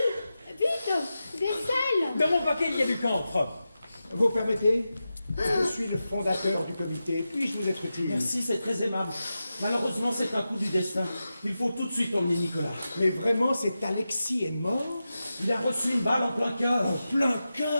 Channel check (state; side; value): inverted; both; correlation -0.92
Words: Vite, des selles. Dans mon paquet, il y a du camphre. Vous permettez? Je suis le fondateur du comité. Puis-je vous être utile? Merci, c'est très aimable. Malheureusement, c'est un coup du destin. Il faut tout de suite emmener Nicolas. Mais vraiment, cet Alexis est mort? Il a reçu une balle en plein cœur. En plein